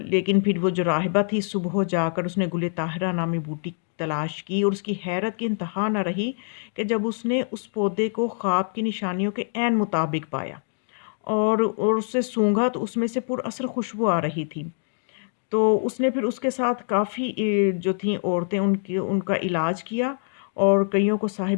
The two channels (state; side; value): silent; right; digital silence